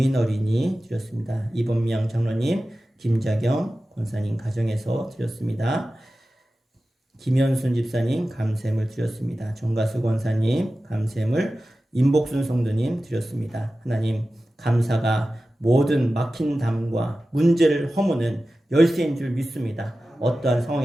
어린이 드렸습니다. 이범명 장로님, 김자경 권사님 가정에서 드렸습니다. 김현순 집사님 감샘을 드렸습니다. 정가수 권사님 감샘을, 임복순 성도님 드렸습니다. 하나님 감사가 모든 막힌 담과 문제를 허무는 열쇠인 줄 믿습니다. 어떠한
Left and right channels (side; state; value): both; normal; correlation 0.94